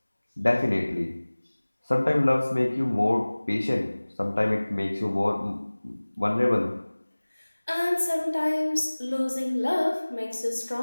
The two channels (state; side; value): inverted; both; correlation -1.00